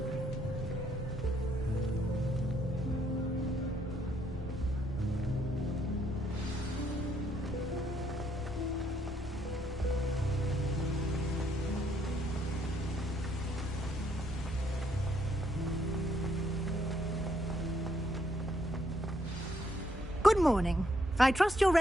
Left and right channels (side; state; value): both; normal; correlation 0.71